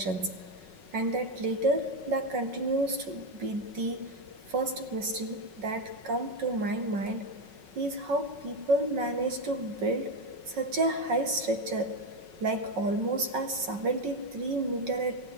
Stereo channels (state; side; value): late; left; 5.4 ms